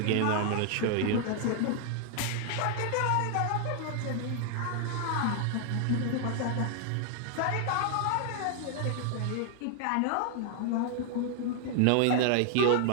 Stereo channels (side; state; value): both; different; correlation 0.00